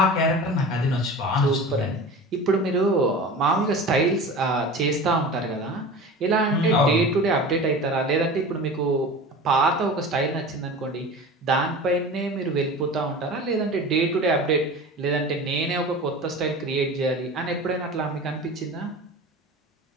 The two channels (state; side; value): normal; both; correlation 0.35